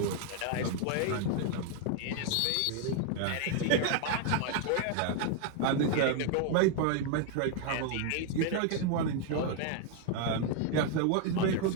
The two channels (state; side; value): different; both; correlation 0.01